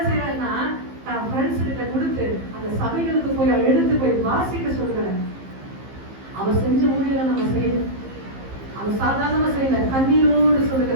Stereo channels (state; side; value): late; left; 15 ms